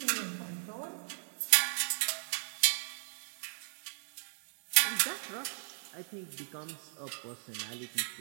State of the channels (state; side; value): silent; left; digital silence